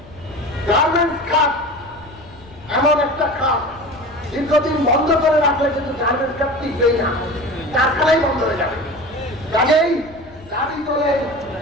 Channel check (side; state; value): left; noise; rumble, 22 dB below the sound